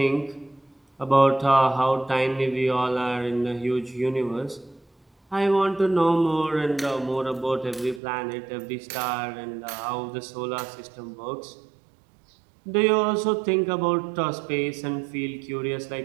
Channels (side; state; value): left; drops out; at 8.0 s